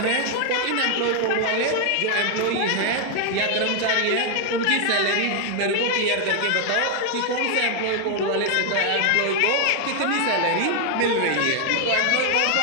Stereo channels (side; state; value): both; different; correlation 0.00